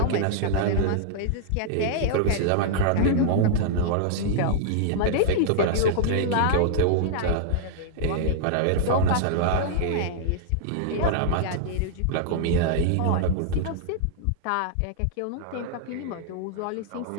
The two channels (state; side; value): different; both; correlation -0.01